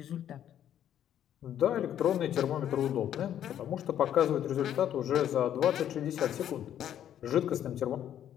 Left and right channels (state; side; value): quieter; right; 10.5 dB